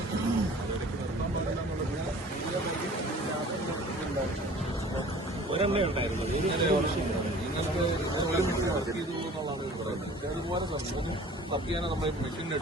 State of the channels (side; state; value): both; normal; correlation 0.46